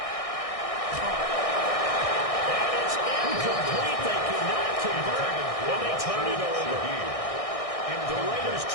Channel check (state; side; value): late; right; 1.6 ms